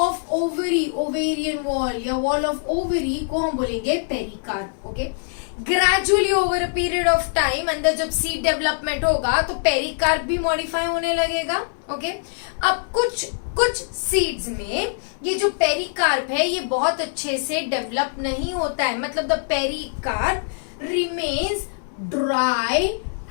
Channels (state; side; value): silent; right; 63 dB below the other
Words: ovary, ovarian wall या वॉल ऑफ ओवरी को हम बोलेंगे pericarp. Okay, gradually over a period of time अंदर जब सीड डेवलपमेंट होगा तो पेरिकार्प भी मॉडिफाई होने लगेगा। ओके, अब कुछ सीड्स में ये जो पेरिकार्प है ये बहुत अच्छे से डेवलप नहीं होता है, मतलब the pericarp remains dry